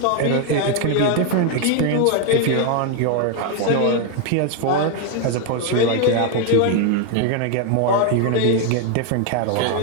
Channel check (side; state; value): both; different; correlation 0.01